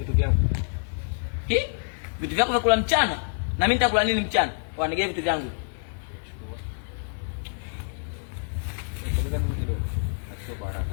vyangu. Vitu vyako vya kula mchana? Na mimi nitakula nini mchana? Wanigee vitu vyangu. Ngoja mimi kidogo. Achukue kwa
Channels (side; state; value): right; silent; 56 dB below the other